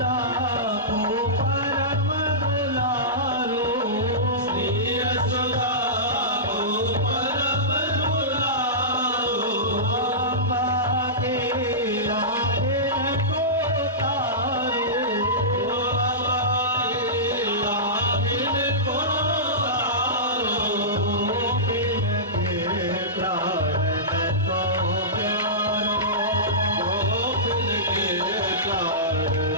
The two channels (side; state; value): both; normal; correlation -0.17